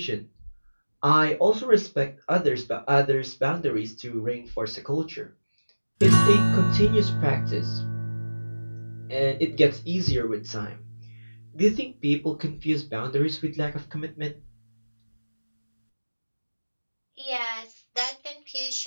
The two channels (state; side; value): inverted; both; correlation -1.00